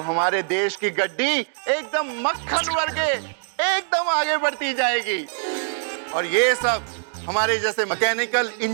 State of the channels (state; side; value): silent; left; digital silence